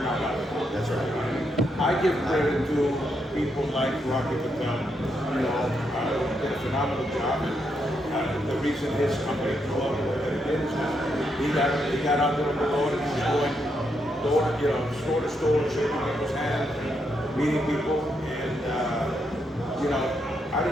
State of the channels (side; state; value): both; normal; correlation 0.80